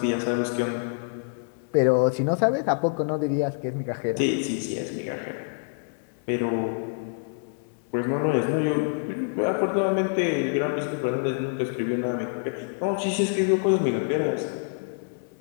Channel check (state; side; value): silent; right; 61 dB below the other